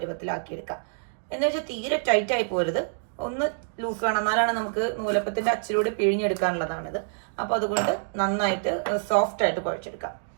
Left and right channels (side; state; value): left; silent; digital silence